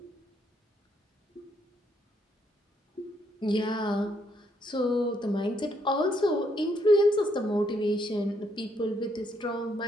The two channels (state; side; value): normal; both; correlation 0.73